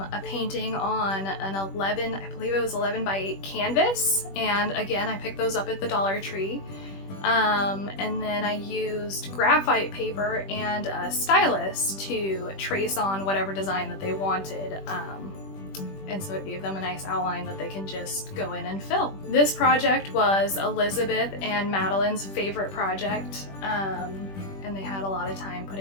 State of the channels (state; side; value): late; right; 21 ms